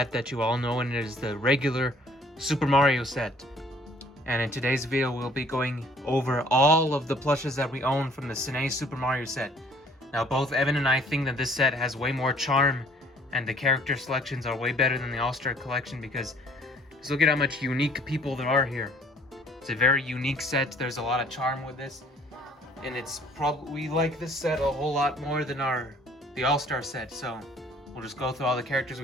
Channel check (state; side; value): normal; both; correlation 0.57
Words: you all know, and it is the regular Super Mario set. And in today's video, we'll be going over all of the plushes that we own from the Cine Super Mario set. Now, both Evan and I think that this set has way more charm, and the character selections are way better than the All-Star collection because just look at how much unique people there are here. It's a very unique set. There's a lot of charm with this, and it's probably we like this set a whole lot more than the All-Star set. So we'll just go through all the characters